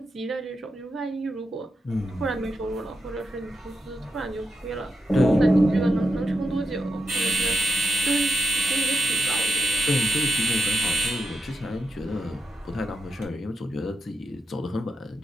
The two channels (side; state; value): both; normal; correlation 0.87